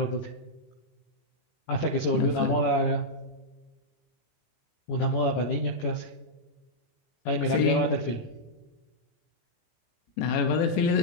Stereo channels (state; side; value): late; right; 17 ms